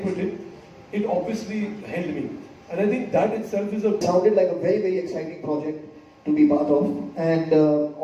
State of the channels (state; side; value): identical; both; correlation 1.00